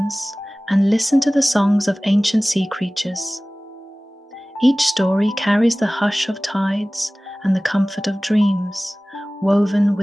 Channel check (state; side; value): normal; both; correlation 0.98